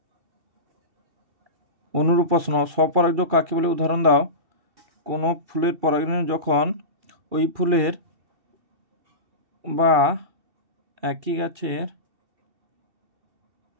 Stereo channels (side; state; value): left; late; 2.4 ms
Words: অনুরূপ প্রশ্ন, স্বপরাগযোগ কাকে বলে উদাহরণ দাও। কোনো ফুলের পরাগরেণু যখন ওই ফুলের বা একই গাছের